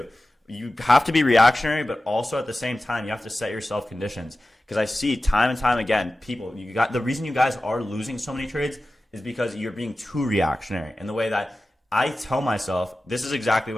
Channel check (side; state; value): both; normal; correlation 0.95